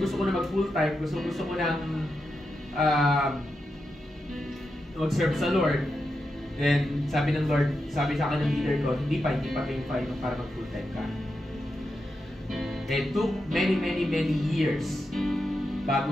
ko na mag full time. Gusto ko nang mag-serve sa Lord. Then sabi ng Lord, sabi sa akin ng leader ko, hindi pa time para mag full time ka. It took many years bago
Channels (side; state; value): both; normal; correlation 0.87